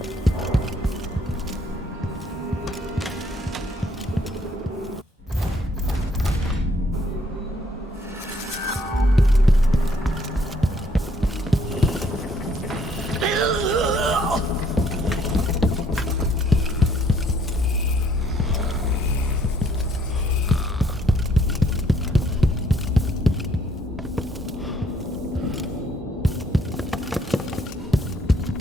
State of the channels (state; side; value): normal; both; correlation 0.65